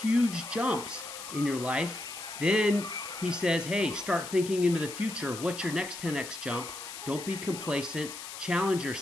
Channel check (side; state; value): left; noise; hiss, 10 dB below the sound